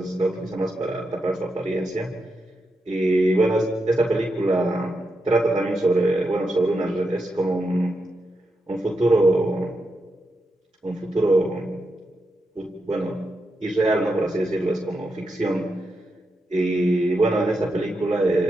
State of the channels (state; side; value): normal; both; correlation 0.86